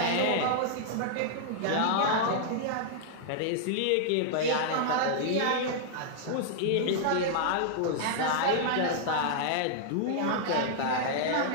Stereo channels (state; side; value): different; both; correlation -0.01